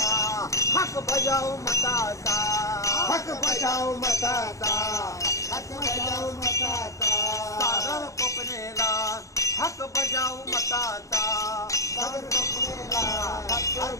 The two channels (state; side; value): late; right; 0.15 ms